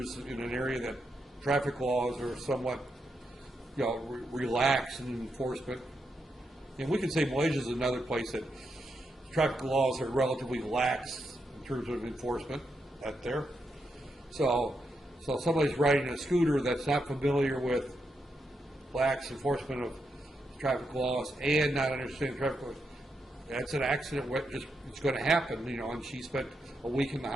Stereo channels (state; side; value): normal; both; correlation 0.83